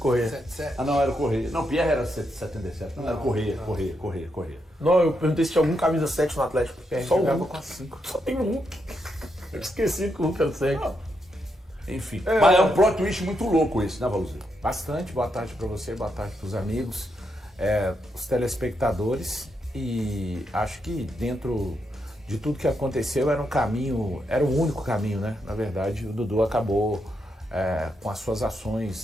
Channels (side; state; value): both; normal; correlation 0.81